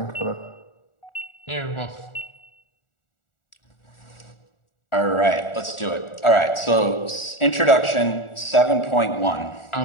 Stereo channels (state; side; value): late; right; 1.4 ms